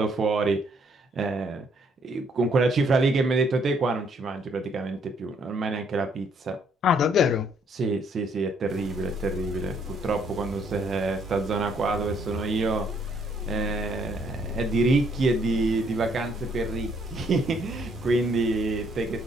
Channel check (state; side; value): normal; both; correlation 0.67